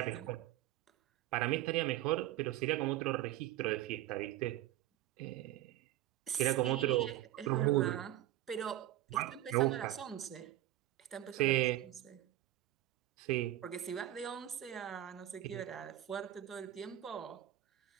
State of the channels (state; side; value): quieter; left; 14.3 dB